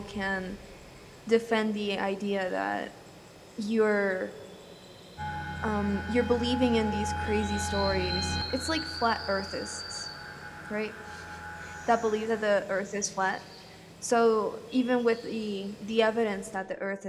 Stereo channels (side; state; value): both; identical; correlation 1.00